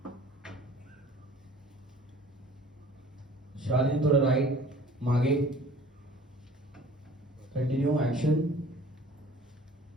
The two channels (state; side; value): normal; both; correlation 0.49